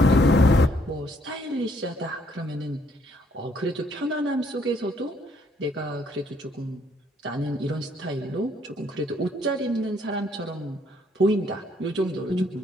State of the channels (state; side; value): normal; both; correlation 0.68